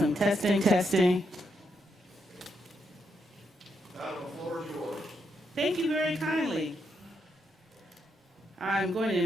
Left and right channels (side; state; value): both; normal; correlation 0.80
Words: Testing, testing. Madam, the floor is yours. Thank you very kindly. I'm going to